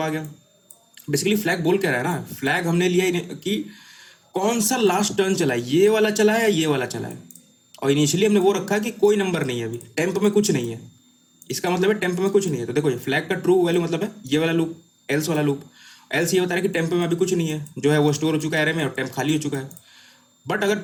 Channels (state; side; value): identical; both; correlation 1.00